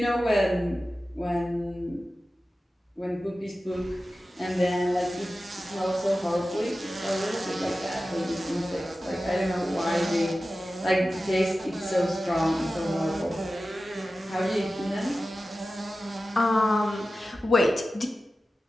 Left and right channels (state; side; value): normal; both; correlation 0.94